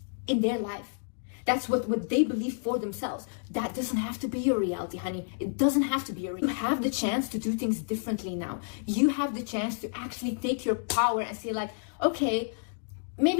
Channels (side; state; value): right; silent; digital silence